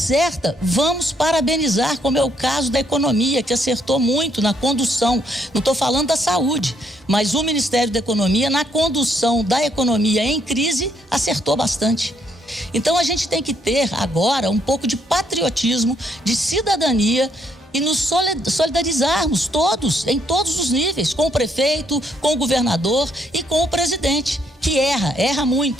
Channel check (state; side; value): normal; both; correlation 0.71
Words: vamos parabenizar, como é o caso da economia, que acertou muito na condução. Não estou falando da saúde, mas o Ministério da Economia, na condução da economia em crise, acertou bastante. Então, a gente tem que ter agora um pouco de patriotismo, de cidadania e nos solidarizarmos todos, em todos os níveis, com o prefeito, com o governador e com o presidente, que erra